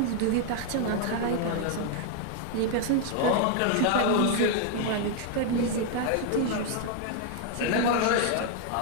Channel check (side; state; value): both; different; correlation 0.00